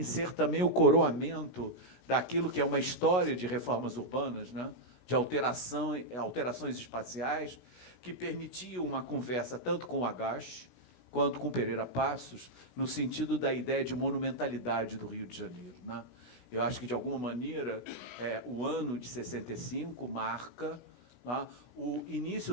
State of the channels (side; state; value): right; late; 16 ms